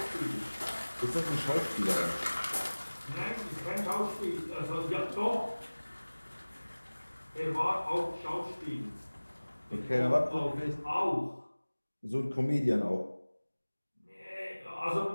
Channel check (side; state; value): both; inverted; correlation -1.00